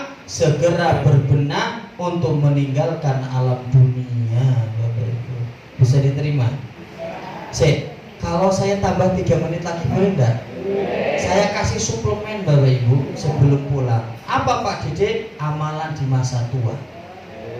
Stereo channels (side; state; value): both; identical; correlation 1.00